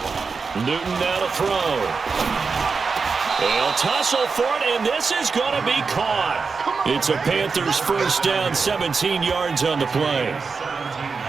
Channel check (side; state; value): left; quieter; 4.9 dB